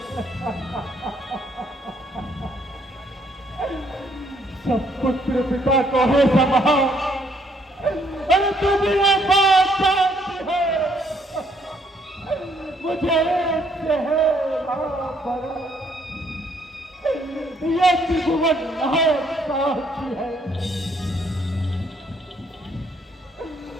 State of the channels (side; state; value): both; normal; correlation 0.68